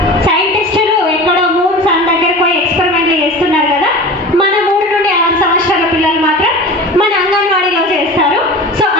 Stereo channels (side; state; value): both; normal; correlation 0.34